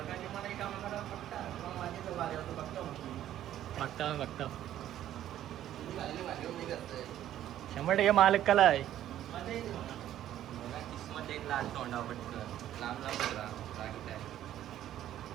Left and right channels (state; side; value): quieter; left; 12.0 dB